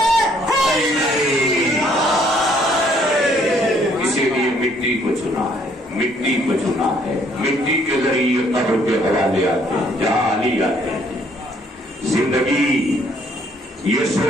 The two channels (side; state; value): both; normal; correlation 0.64